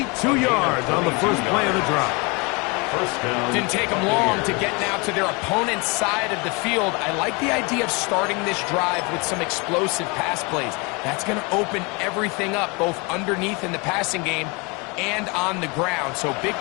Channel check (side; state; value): right; quieter; 28.9 dB